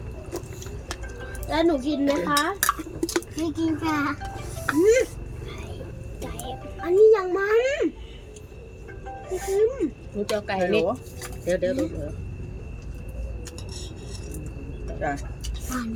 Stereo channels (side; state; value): both; identical; correlation 1.00